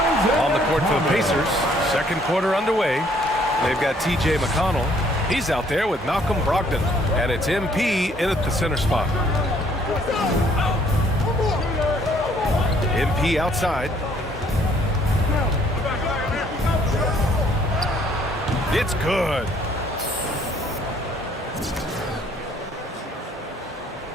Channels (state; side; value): normal; both; correlation 0.63